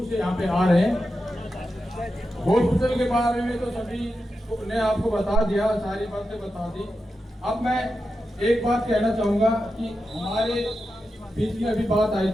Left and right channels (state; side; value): normal; both; correlation 0.90